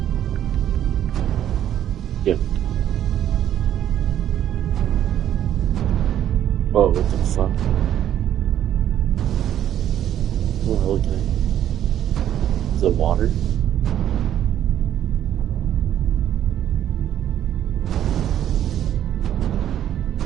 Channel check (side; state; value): left; quieter; 10.9 dB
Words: Yep. Whoa, what the fuck? Oh, okay. Is it water?